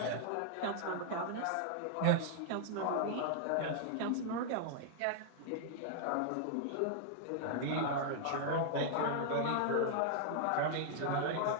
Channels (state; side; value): different; both; correlation -0.01